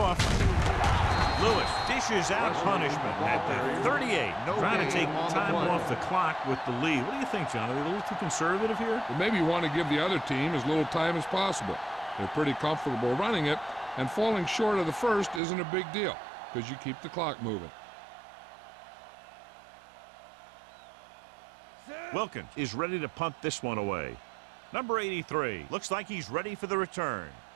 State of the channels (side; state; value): left; drops out; at 15.4 s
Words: Lewis dishes out punishment at the 38. Trying to take time off the clock with the lead. What do you think, John? Are they a little too conservative here? Well, maybe you want to give the other team as little time as possible. They're pretty comfortable running it, and falling short of the first isn't a big deal because you keep the clock moving. Wilkins is ready to punt this one away. Number 83 looks like he's ready for the return.